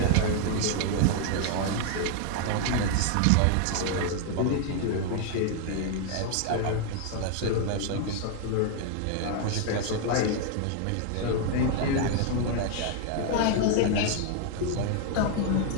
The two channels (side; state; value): both; different; correlation 0.00